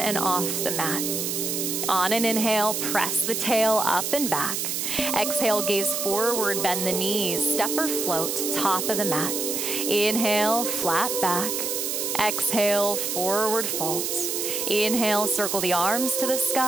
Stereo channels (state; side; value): noise; right; hiss, 1 dB below the sound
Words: off the mat. On an inhale, press the tail up and back. Exhale, gaze forward, bend the knees, step or float, top of the mat. Inhale, flat back. Exhale, forward fold. Inhale, circle the arms to the